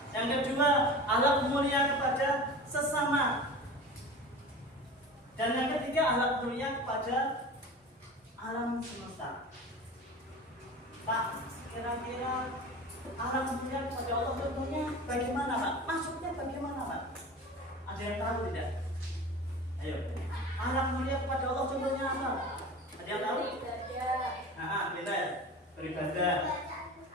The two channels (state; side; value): normal; both; correlation 0.35